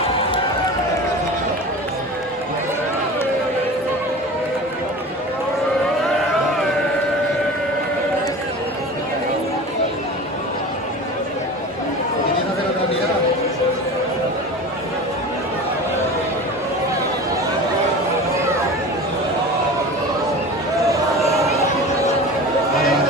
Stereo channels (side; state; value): both; normal; correlation 0.34